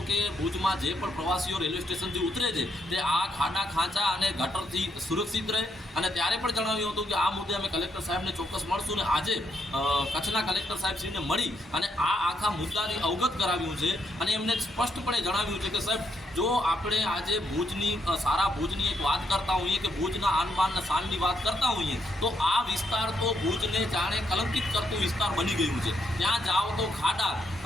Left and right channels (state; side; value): normal; both; correlation 0.76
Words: કે ભુજમાં જે પણ પ્રવાસીઓ રેલવે સ્ટેશનથી ઉતરે છે તે આ ખાડા ખાંચા અને ગટરથી સુરક્ષિત રહે। અને ત્યારે પણ જણાવ્યું હતું કે આ મુદ્દે અમે કલેક્ટર સાહેબને ચોક્કસ મળશું ને આજે કચ્છના કલેક્ટર સાહેબશ્રીને મળી અને આ આખા મુદ્દાની અવગત કરાવ્યું છે અને એમને સ્પષ્ટપણે જણાવ્યું છે કે સાહેબ, જો આપણે આજે ભુજની સારા ભુજની એક વાત કરતા હોઈએ કે ભુજના આનબાન અને શાનની વાત કરતા હોઈએ તો આ વિસ્તાર તો ભુજને જાણે કલંકિત કરતું વિસ્તાર બની ગયું છે। ત્યાં જાઓ તો ખાડા,